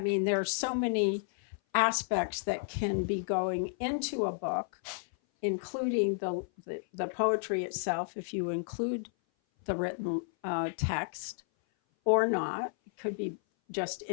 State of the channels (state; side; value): silent; right; 56 dB below the other